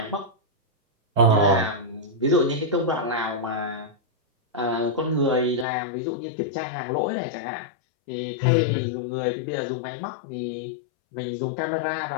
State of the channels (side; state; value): right; drops out; at 5.7 s